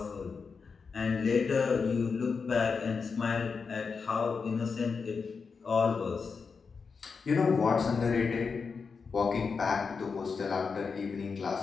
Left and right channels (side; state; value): right; quieter; 5.2 dB